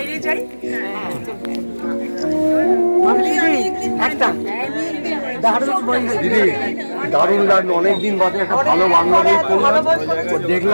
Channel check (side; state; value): both; inverted; correlation -1.00